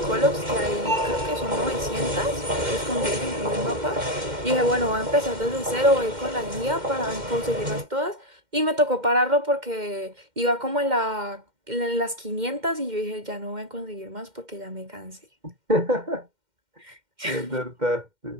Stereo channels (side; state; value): left; late; 2.1 ms